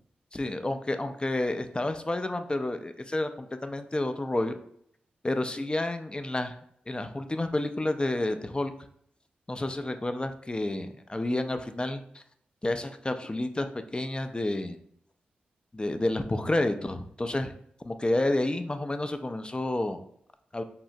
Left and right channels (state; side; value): normal; both; correlation 0.96